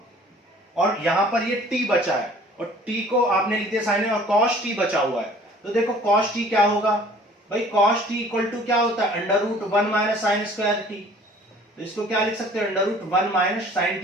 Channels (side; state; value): both; normal; correlation 0.51